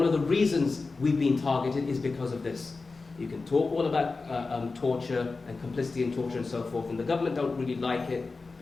of the reasons we've been targeted is because of this. You can talk all about torture and complicity in torture and so forth, and the government don't really like it,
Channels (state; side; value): quieter; right; 3.9 dB